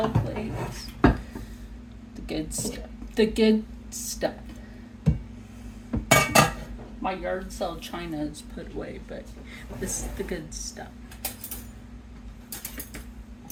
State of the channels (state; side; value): identical; both; correlation 1.00